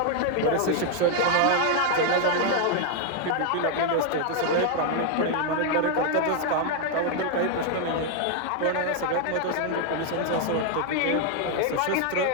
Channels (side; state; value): both; different; correlation 0.00